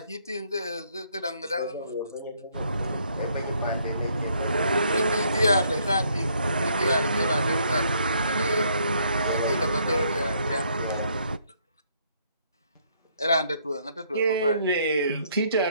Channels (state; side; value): inverted; both; correlation -0.68